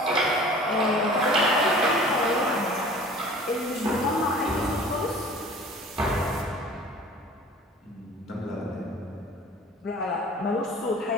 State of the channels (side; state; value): both; normal; correlation 0.45